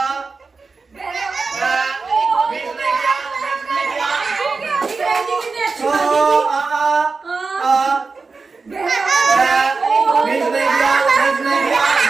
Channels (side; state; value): left; quieter; 4.3 dB